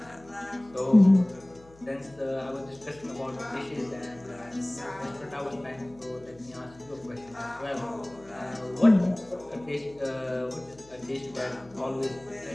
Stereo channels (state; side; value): noise; left; hum, 25 dB below the sound